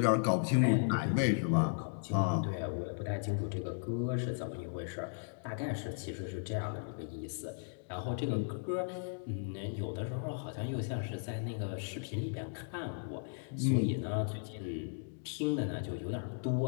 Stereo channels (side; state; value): right; silent; digital silence